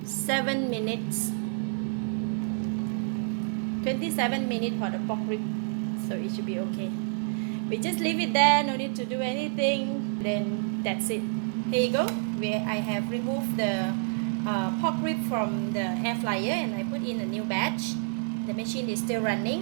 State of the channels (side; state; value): left; silent; 59 dB below the other